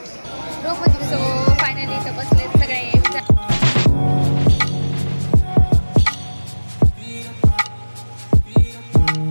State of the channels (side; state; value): both; inverted; correlation -1.00